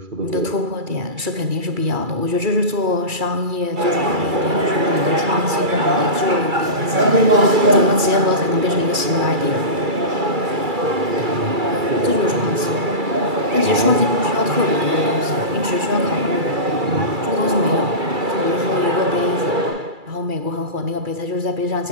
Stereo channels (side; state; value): left; late; 2.3 ms